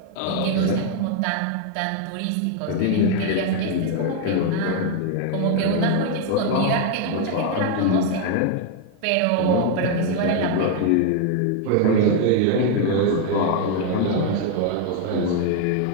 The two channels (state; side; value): different; both; correlation 0.01